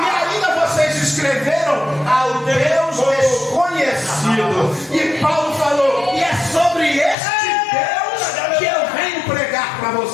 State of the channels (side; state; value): right; drops out; at 7.2 s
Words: ainda vocês escreveram ao Deus desconhecido. E Paulo falou: e é sobre este Deus que eu venho pregar para